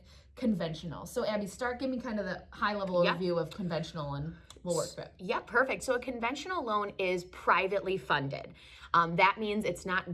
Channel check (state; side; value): identical; both; correlation 1.00